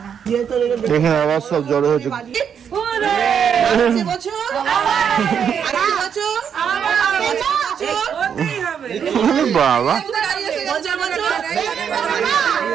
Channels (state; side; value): quieter; left; 7.7 dB